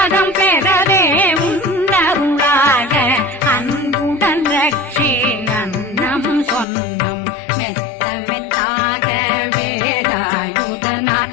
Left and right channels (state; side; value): drops out; right; at 6.7 s